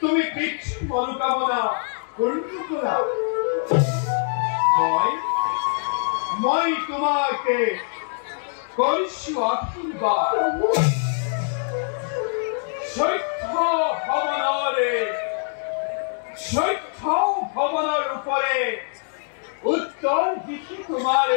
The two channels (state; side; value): silent; right; digital silence